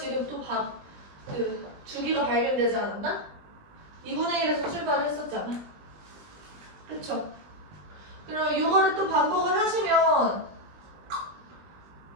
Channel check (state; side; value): late; left; 20 ms